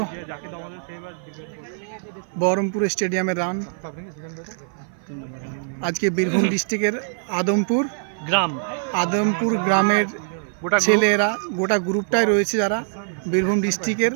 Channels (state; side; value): silent; left; 56 dB below the other